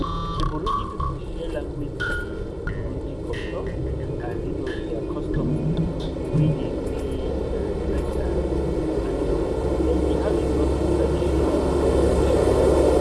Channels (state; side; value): identical; both; correlation 1.00